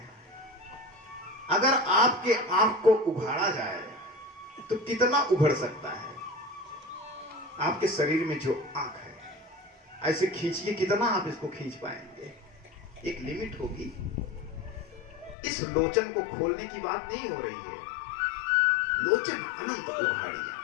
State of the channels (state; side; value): drops out; right; at 15.4 s